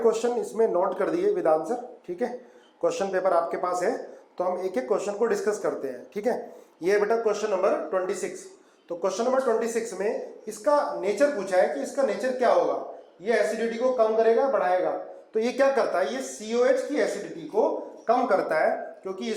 इसमें नोट कर दिए विद आंसर। ठीक है, क्वेश्चन पेपर आपके पास है तो हम एक एक क्वेश्चन को डिस्कस करते हैं। ठीक है, ये बेटा क्वेश्चन नंबर 26। तो क्वेश्चन नंबर 26 में इसका नेचर पूछा है कि इसका नेचर क्या होगा। ये एसिडिटी को कम करेगा बढ़ाएगा। तो ये क्या करता है, ये COH की एसिडिटी को कम करता है क्योंकि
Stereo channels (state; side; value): identical; both; correlation 1.00